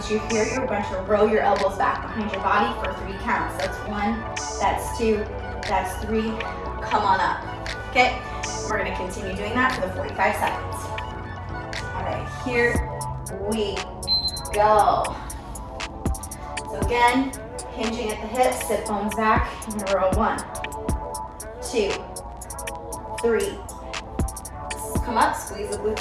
you're here, you're going to roll your elbows back behind your body for 3 counts. That's 1, that's 2, that's 3. Come on up. Okay, we're going to continue doing that for the 45 seconds. All right, here we go. So again, hinging at the hips, sit bones back, in a row. 1, 2, 3. Come up, squeeze the glutes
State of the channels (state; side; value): identical; both; correlation 1.00